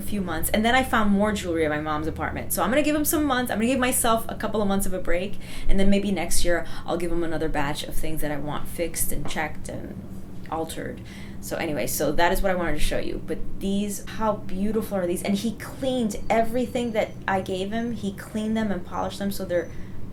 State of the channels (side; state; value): both; identical; correlation 1.00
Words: few months. And then I found more jewelry at my mom's apartment. So I'm going to give him some months. I'm going to give myself a couple of months of a break. And then maybe next year I'll give him another batch of things that I want fixed and checked and altered. So anyway, so that is what I wanted to show you. But these, how beautiful are these? And he cleaned everything that I gave him. He cleaned them and polished them so they're